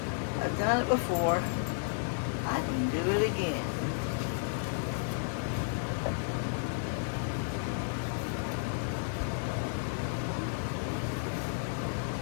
I've done it before. I can do it again.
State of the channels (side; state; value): right; silent; 56 dB below the other